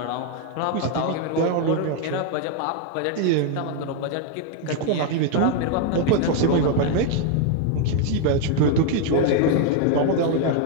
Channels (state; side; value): different; both; correlation 0.01